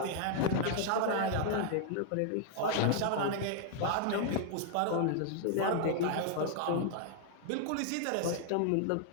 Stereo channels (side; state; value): both; different; correlation 0.00